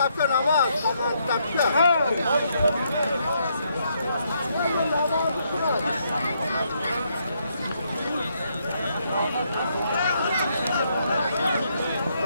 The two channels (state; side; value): inverted; both; correlation -0.75